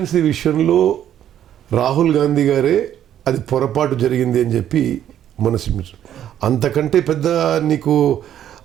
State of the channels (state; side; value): quieter; left; 10.7 dB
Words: విషయంలో రాహుల్ గాంధీ గారే అది పొరపాటు జరిగింది అని చెప్పి మనసు, అంతకంటే పెద్ద నీకు